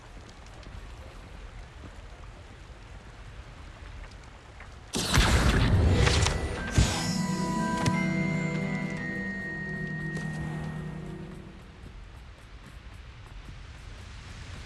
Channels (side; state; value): both; identical; correlation 1.00